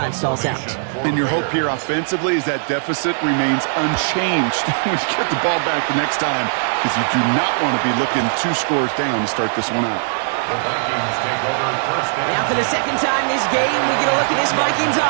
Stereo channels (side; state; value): left; silent; 66 dB below the other